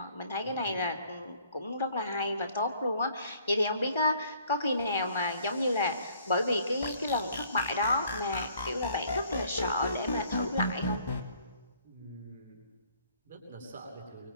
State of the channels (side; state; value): both; inverted; correlation -0.60